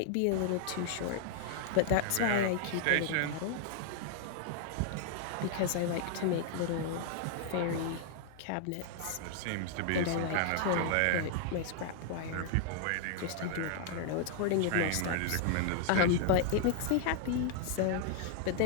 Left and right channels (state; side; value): different; both; correlation 0.00